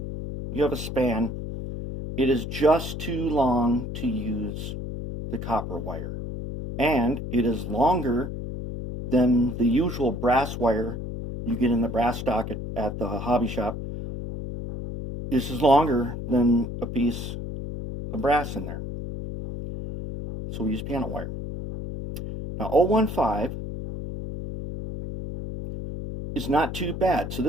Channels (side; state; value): left; noise; hum, 6 dB below the sound